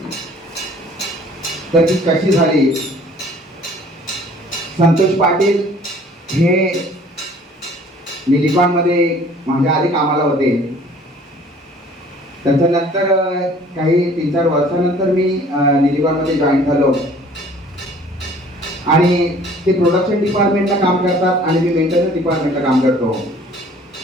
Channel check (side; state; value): both; normal; correlation 0.53